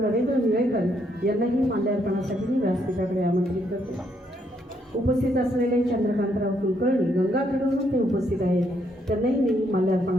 निळेकर यांनाही माल्यार्पणासाठी मी व्यासपीठाकडे आमंत्रित करते। उपस्थित असलेले चंद्रकांतराव कुलकर्णी गंगाखेडवरून ते उपस्थित आहेत, त्यांनाही मी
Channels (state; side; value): normal; both; correlation 0.73